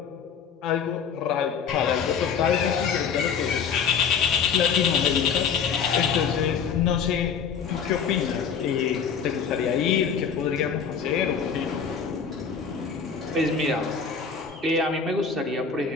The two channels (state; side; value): quieter; right; 6.5 dB